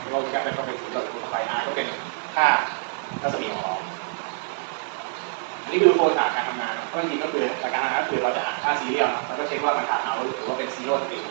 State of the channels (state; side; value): silent; left; digital silence